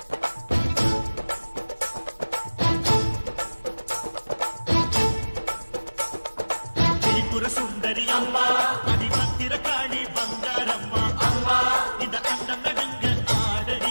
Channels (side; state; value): both; inverted; correlation -1.00